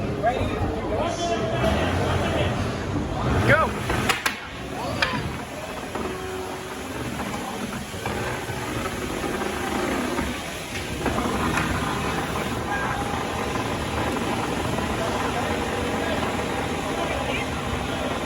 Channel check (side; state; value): both; identical; correlation 1.00